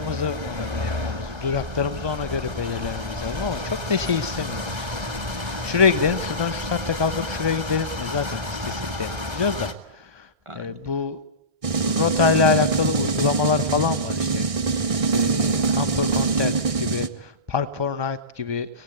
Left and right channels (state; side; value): late; left; 1.6 ms